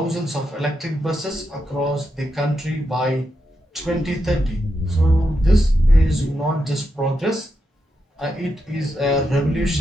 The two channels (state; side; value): normal; both; correlation 0.85